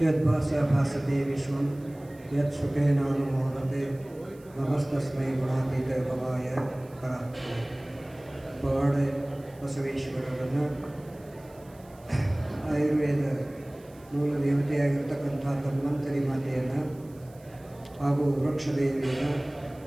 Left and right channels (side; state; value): right; noise; hiss, 28 dB below the sound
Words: ಯದ್ಭಾಸ್ಯ ಭಾಸತೆ ವಿಶ್ವಂ ಯತ್ ಸುಖೇನಾನುಮೋದತೆ ನಮಸ್ತಸ್ಮೈ ಗುಣಾತೀತ ಭವಾಯ ಪರಾತ್ಮನೆ. ಪವಾಡ ಬಸವೇಶ್ವರರನ್ನು ಆಯುರ್ವೇದ ಮೂಲ ದೇವತೆಯಾಗಿರ್ತಕ್ಕಂಥ ಧನ್ವಂತರಿ ಮಾತೆಯನ್ನು ಹಾಗೂ ವೃಕ್ಷದೇವಿಯನ್ನು